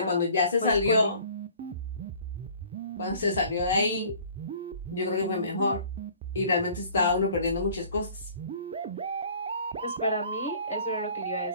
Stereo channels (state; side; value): inverted; both; correlation -0.51